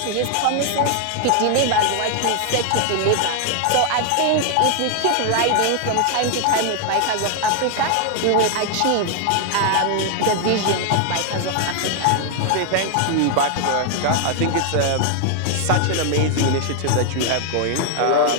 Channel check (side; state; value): both; different; correlation 0.00